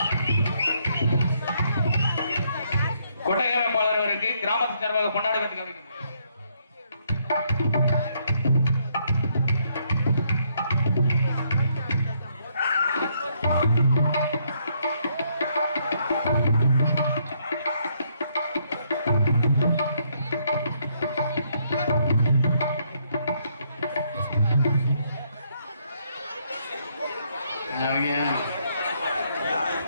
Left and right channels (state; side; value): inverted; both; correlation -0.72